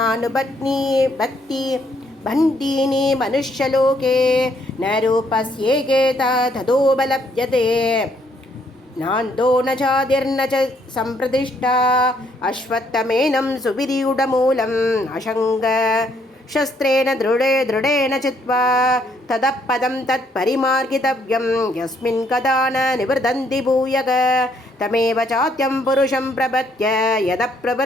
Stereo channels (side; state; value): both; normal; correlation 0.69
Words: भक्ति बन्धीनि मनुष्यलोके न रूपस्येके तथोपलभ्यते नान्तो न चादिर्न च सम्प्रतिष्ठा अश्वत्थमेनं सुविरूढमूलम् अशङ्ग शस्त्रेण दृढेन चित्वा ततः पदं तत्परिमार्गितव्यं यस्मिन् कदा न निवर्धन्ति भूयः तमेव चात्यं पुरुषं प्रपद्य यतः